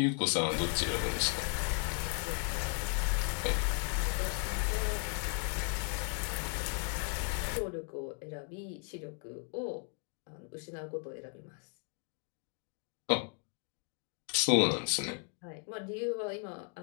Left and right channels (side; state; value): right; quieter; 38.5 dB